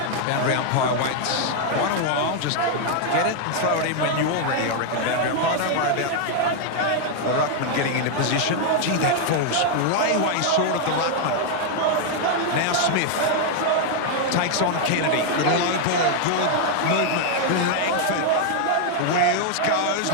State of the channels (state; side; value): different; both; correlation 0.00